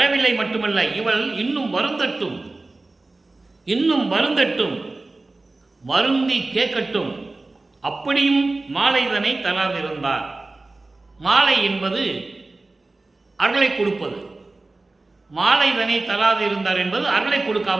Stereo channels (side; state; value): left; quieter; 3.2 dB